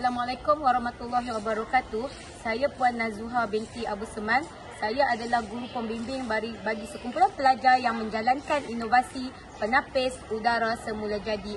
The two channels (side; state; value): both; identical; correlation 1.00